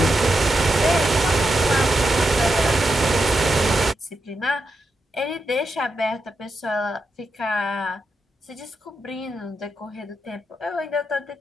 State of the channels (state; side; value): normal; both; correlation 0.86